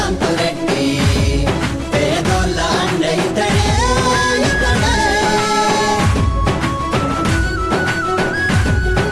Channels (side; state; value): both; identical; correlation 1.00